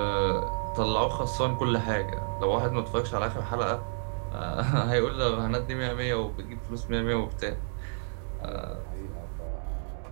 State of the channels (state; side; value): silent; left; 57 dB below the other